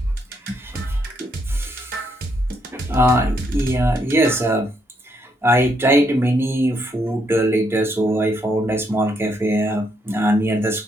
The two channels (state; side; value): normal; both; correlation 0.75